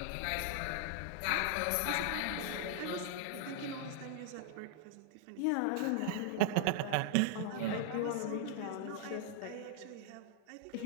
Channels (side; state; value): both; different; correlation -0.01